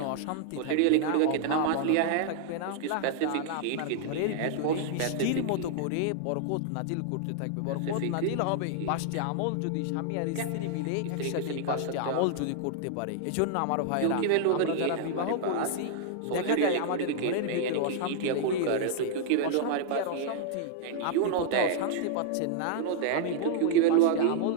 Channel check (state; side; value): different; both; correlation -0.01